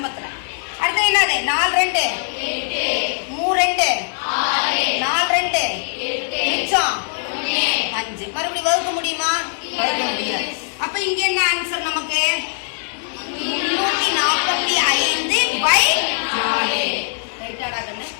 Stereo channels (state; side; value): silent; right; 63 dB below the other